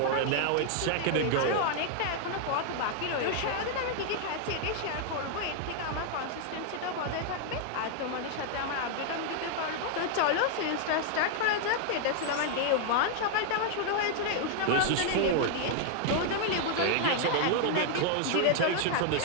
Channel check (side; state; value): both; different; correlation 0.00